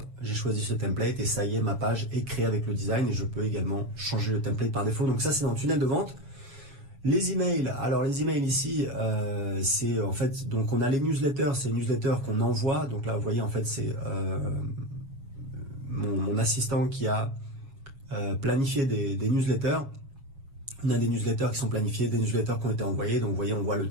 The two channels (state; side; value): late; left; 7.2 ms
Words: j'ai choisi ce template et ça y est, ma page est créée avec le design et je peux également changer le template par défaut. Donc ça, c'est dans le tunnel de vente. Les emails, alors les emails ici, c'est en fait, donc on a les newsletters, c'est les newsletters qu'on envoie. Donc là, vous voyez, en fait, c'est mon assistant qui a planifié des newsletters. On a des newsletters qui sont planifiés, des newsletters qui ont été envoyés. Donc vous voyez, on voit le